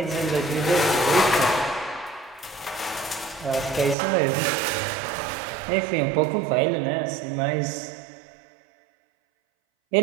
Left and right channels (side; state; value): left; drops out; at 4.0 s